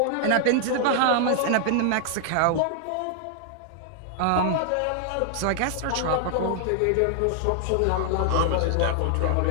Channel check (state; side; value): different; both; correlation 0.00